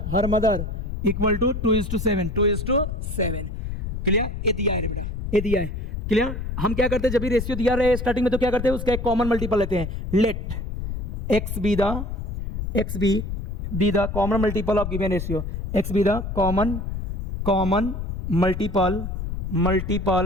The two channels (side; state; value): left; noise; rumble, 4 dB below the sound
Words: her mother equal to 2:7। Clear. ये दिया है रे बेटा, ये दिया है। क्लियर। हम क्या करते हैं, जब भी रेशियो दिया रहे स्टार्टिंग में, तो क्या करते हैं, उसका एक कॉमन मल्टीपल लेते हैं। Let x be the common multiple of given ratio, x be the common multiple